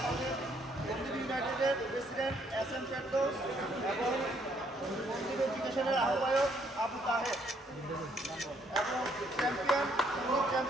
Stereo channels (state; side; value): normal; both; correlation 0.68